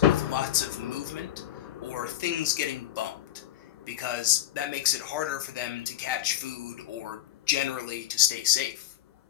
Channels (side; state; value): right; quieter; 12.9 dB